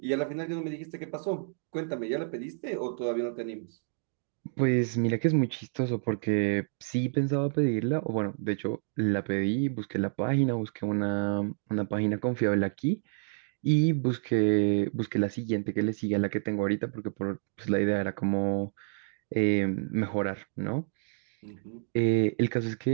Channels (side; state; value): left; silent; digital silence